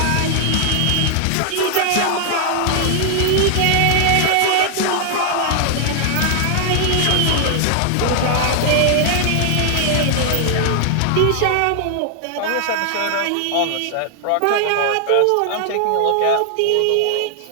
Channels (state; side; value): different; both; correlation 0.00